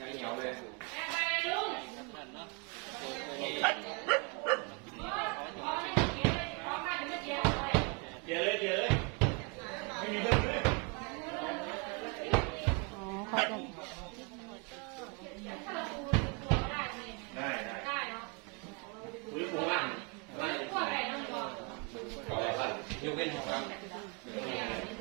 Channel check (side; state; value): left; quieter; 33.0 dB